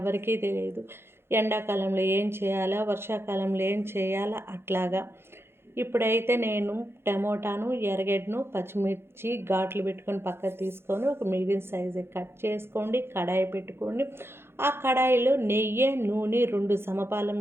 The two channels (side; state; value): left; late; 0.12 ms